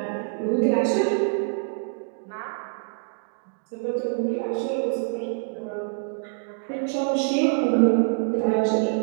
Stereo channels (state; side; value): silent; left; digital silence